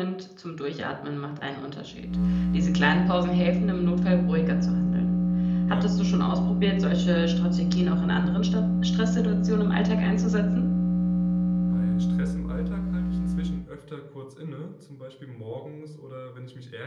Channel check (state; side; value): identical; both; correlation 1.00